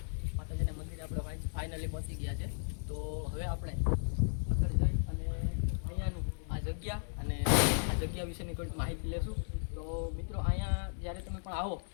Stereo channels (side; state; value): right; silent; digital silence